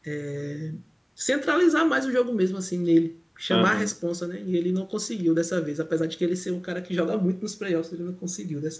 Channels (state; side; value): identical; both; correlation 1.00